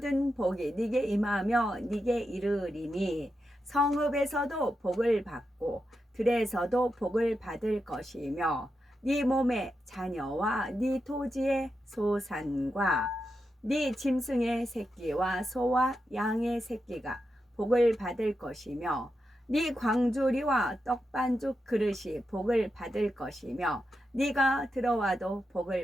복이 네게 임하며 네게 이르리니 성읍에서도 복을 받고 들에서도 복을 받을 것이며 네 몸의 자녀와 네 토지의 소산과 네 짐승의 새끼와 소와 양의 새끼가 복을 받을 것이며 네 광주리와 떡반죽 그릇이 복을 받을 것이며 네가 들어와도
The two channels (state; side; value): normal; both; correlation 0.87